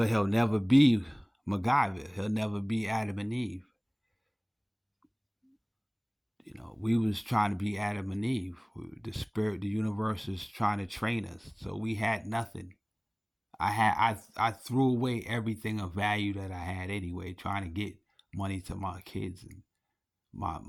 he'll never be MacGyver. He'll never be Adam and Eve. We was trying to be Adam and Eve. The spirit, the universe is trying to train us. So we had nothing. I threw away everything of value that I had anyway, trying to get money to my kids and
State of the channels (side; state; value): both; identical; correlation 1.00